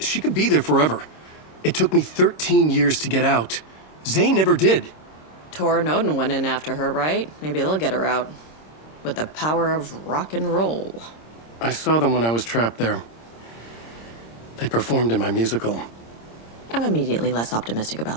she could be there forever. It took me 13 years to get out. Zane never did. Tor and Odin went in after her, right? Maybe they'll get her out. With the power of rock and roll. I saw them when I was trapped there. They performed in my musical. I'm immediately less optimistic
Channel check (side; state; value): right; late; 26 ms